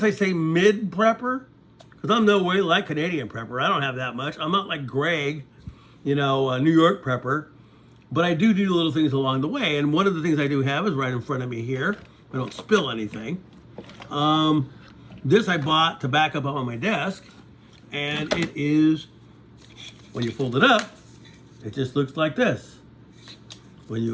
I say mid-prepper, because I'm no way like Canadian prepper. I don't have that much. I'm not like Greg, you know, a New York prepper. But I do little things along the way. And one of the things I do have is right in front of me here. I don't spill anything. This I bought to back up on my desk. And it is, when you fold it up, it just looks like this. When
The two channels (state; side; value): identical; both; correlation 1.00